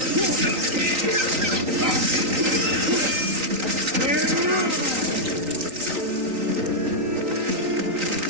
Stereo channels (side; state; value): left; late; 3.9 ms